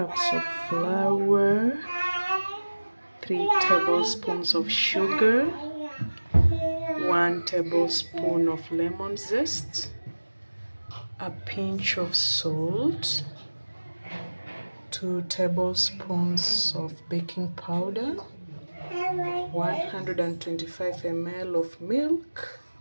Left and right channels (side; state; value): both; inverted; correlation -1.00